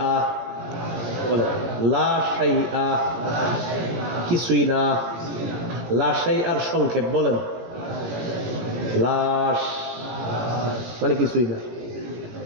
বলেন লা শাইআ, কিছুই না। লা শাইআর সংক্ষেপ বলেন লাশ, মানে কিছুই না।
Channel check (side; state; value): left; late; 18 ms